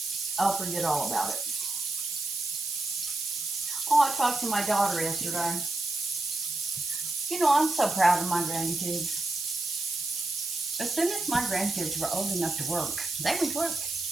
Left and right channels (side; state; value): right; noise; hiss, 5 dB below the sound